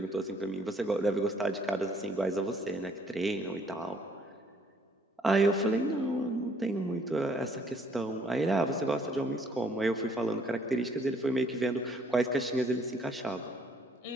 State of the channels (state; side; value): normal; both; correlation 0.63